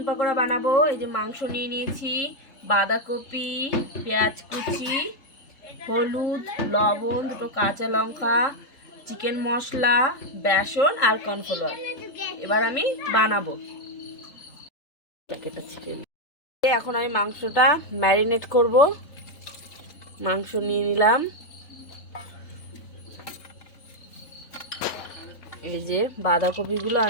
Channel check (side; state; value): right; late; 3.8 ms